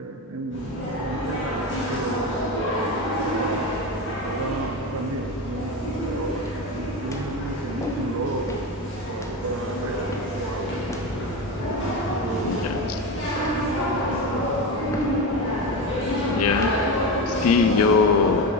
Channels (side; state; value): both; normal; correlation 0.20